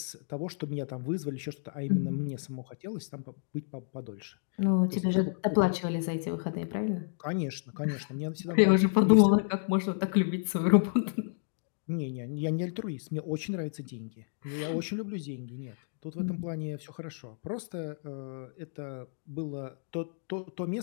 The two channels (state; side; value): silent; right; digital silence